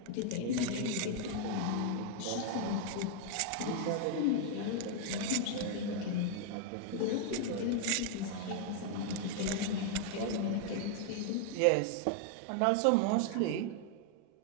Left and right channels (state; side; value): different; both; correlation 0.00